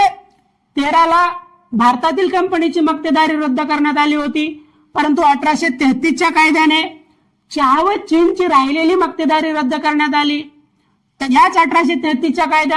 भारतातील कंपनीची मक्तेदारी रद्द करण्यात आली होती, परंतु 1833च्या कायद्याने चहा व चीनची राहिलेली मक्तेदारी रद्द करण्यात आली. तर याच 1833च्या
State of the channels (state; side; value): identical; both; correlation 1.00